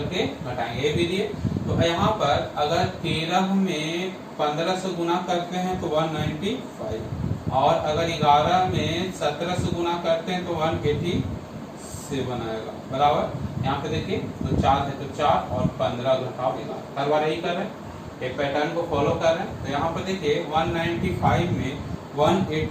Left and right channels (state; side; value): identical; both; correlation 1.00